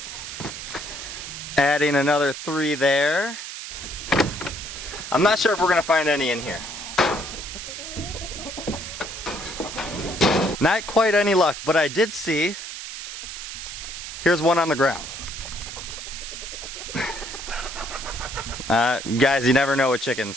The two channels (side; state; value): right; noise; hiss, 9 dB below the sound